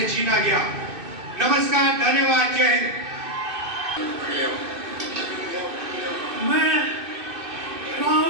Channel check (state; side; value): late; left; 2.6 ms